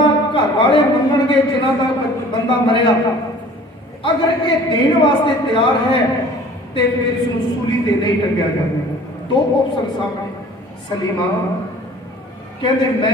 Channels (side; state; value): both; normal; correlation 0.48